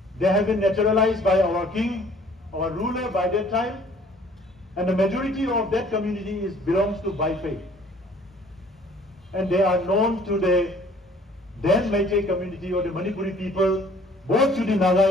They have been naturalized by our king, our ruler by that time, And the majority of that community belongs to Bai faith. And they are known to the then Meitei community or the Manipuri people, both to the Naga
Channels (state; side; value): normal; both; correlation 0.56